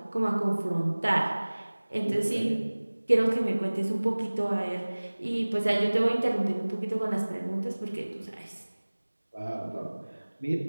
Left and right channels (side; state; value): both; inverted; correlation -1.00